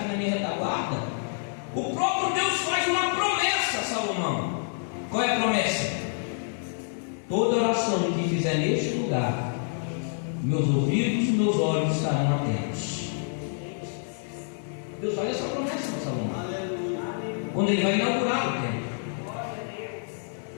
na minha retaguarda, o próprio Deus faz uma promessa a Salomão. Qual é a promessa? Toda oração que fizer neste lugar, meus ouvidos e meus olhos estarão atentos. Deus faz essa promessa para Salomão, quando ele vai inaugurar o templo.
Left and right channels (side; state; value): right; silent; 60 dB below the other